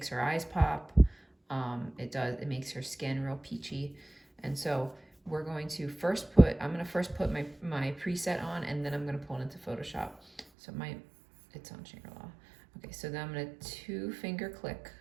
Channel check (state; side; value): drops out; left; at 10.5 s